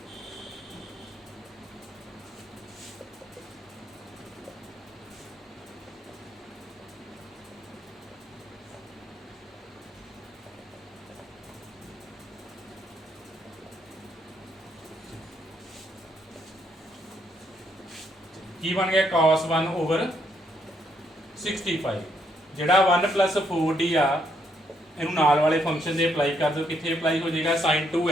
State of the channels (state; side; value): normal; both; correlation 0.74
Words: ਕੀ ਬਣ ਗਿਆ cos 1 ਓਵਰ 65 ਜਿਹੜਾ 1 + 4d ਆ ਇਹਨੂੰ ਨਾਲ ਵਾਲੇ ਫੰਕਸ਼ਨ ਦੇ ਅਪਲਾਈ ਕਰ ਦਿਓ ਕਿੱਥੇ ਅਪਲਾਈ ਹੋ ਜਾਏਗਾ sin